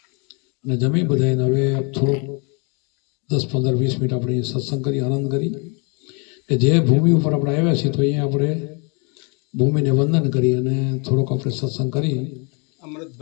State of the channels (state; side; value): quieter; right; 34.1 dB